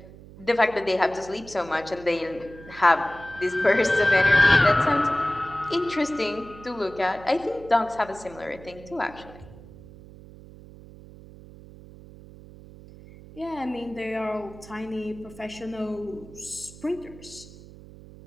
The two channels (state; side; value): noise; right; hum, 19 dB below the sound